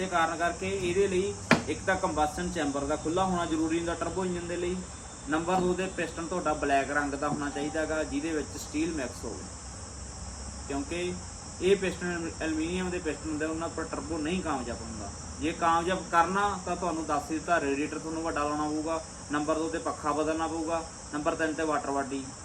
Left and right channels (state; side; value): identical; both; correlation 1.00